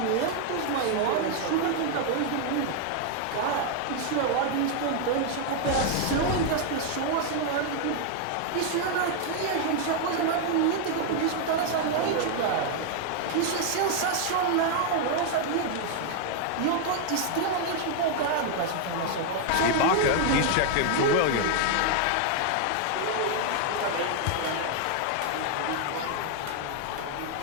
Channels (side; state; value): both; different; correlation 0.00